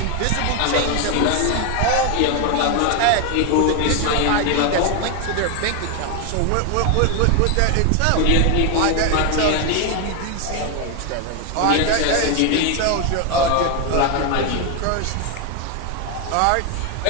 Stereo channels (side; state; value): both; different; correlation 0.01